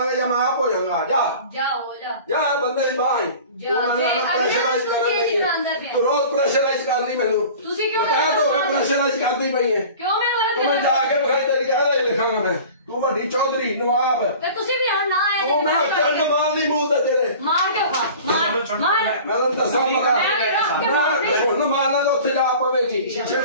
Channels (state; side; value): inverted; both; correlation -0.41